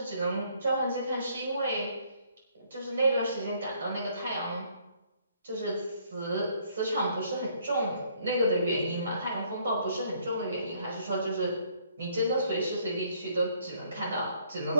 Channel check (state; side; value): inverted; both; correlation -0.65